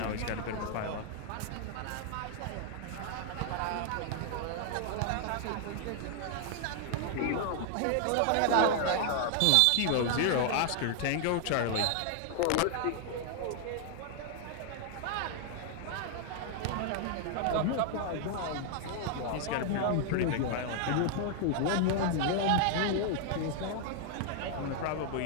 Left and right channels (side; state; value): both; different; correlation 0.00